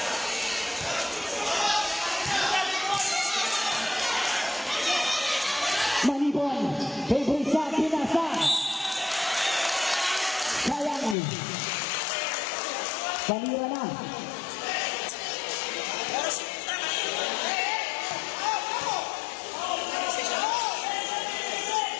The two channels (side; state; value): right; drops out; at 11.2 s